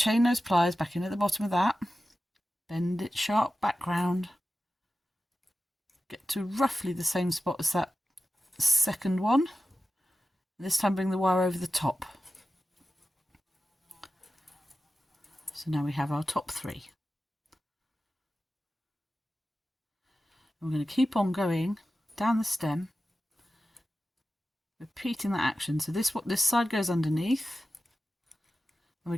nose pliers back in at the bottom of that, bend it sharp back round, get to roughly the same spot as that second one. This time bring the wire over the top. So now we have our top three. We're going to keep on going down the stem, repeating that action. So this side goes underneath. And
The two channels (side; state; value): both; normal; correlation 0.93